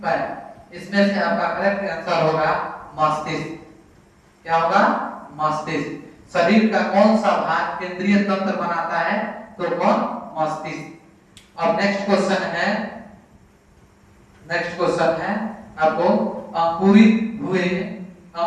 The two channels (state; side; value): identical; both; correlation 1.00